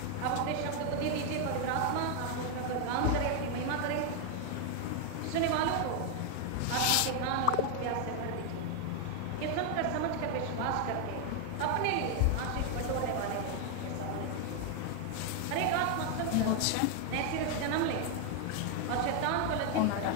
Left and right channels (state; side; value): different; both; correlation 0.01